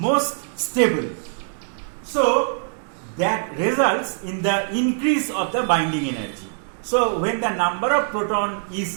stable. So that results in the increase of the binding energy. So when the number of proton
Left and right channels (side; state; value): left; silent; digital silence